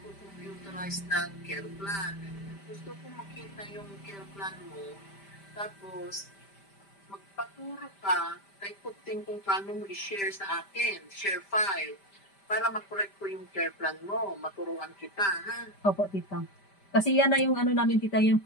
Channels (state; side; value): late; right; 5.1 ms